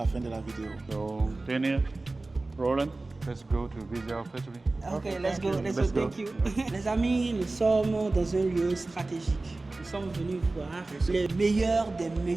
fin de la vidéo. So, Daniel, Roland, let's go to visit our factory. Ok, let's go, thank you. Les amis, nous sommes dans un lieu stratégique. Nous sommes venus voir les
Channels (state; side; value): quieter; left; 3.2 dB